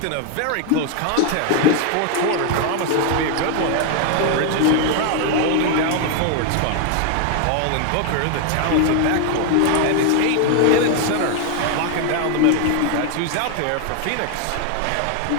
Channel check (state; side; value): different; both; correlation 0.00